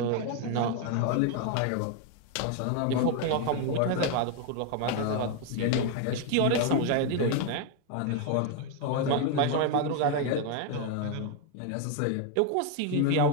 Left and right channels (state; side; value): different; both; correlation 0.01